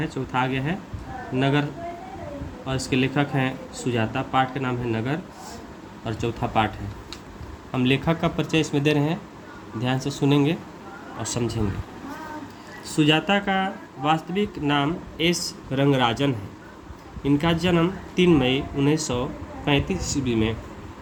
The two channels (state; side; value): identical; both; correlation 1.00